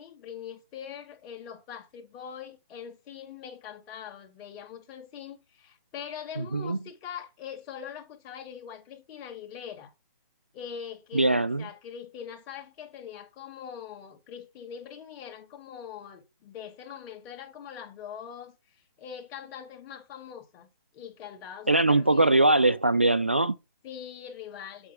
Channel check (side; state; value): both; inverted; correlation -0.68